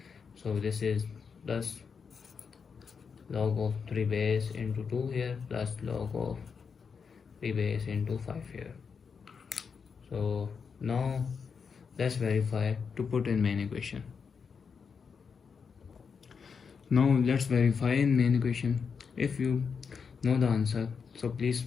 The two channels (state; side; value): quieter; right; 5.9 dB